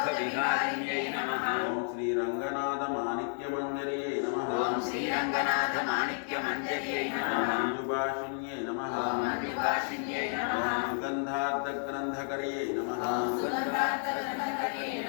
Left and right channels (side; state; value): right; silent; 57 dB below the other